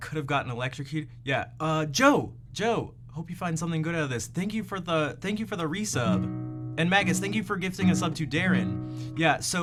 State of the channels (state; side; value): identical; both; correlation 1.00